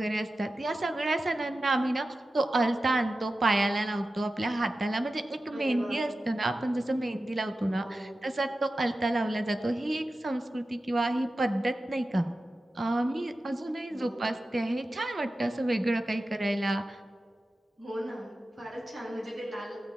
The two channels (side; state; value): both; normal; correlation 0.94